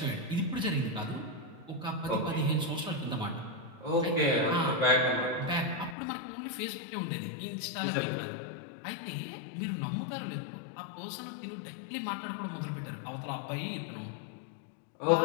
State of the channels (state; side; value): drops out; right; at 6.0 s